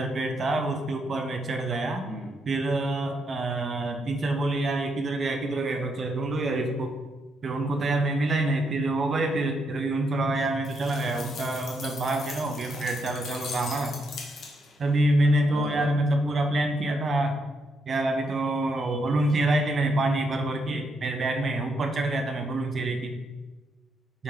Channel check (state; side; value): normal; both; correlation 0.78